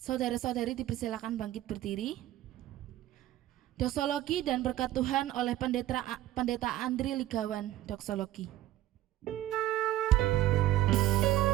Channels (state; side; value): quieter; left; 14.3 dB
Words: dipersilakan bangkit berdiri. Doksologi dan berkat Tuhan oleh Pendeta Andri Ligawan, Doksologi.